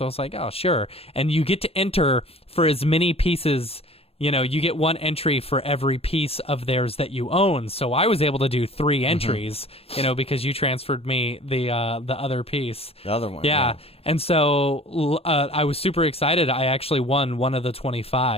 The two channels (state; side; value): late; right; 0.28 ms